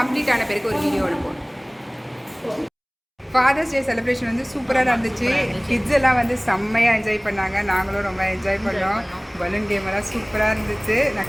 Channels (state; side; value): identical; both; correlation 1.00